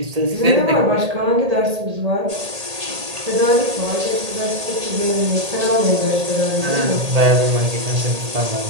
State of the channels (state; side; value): late; left; 1.8 ms